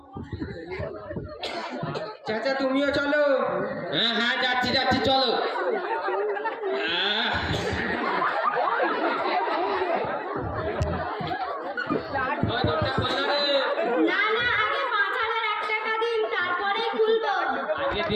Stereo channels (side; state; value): both; identical; correlation 1.00